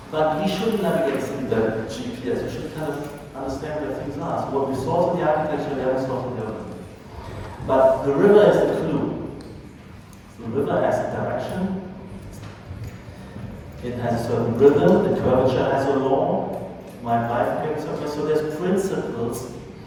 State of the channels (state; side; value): identical; both; correlation 1.00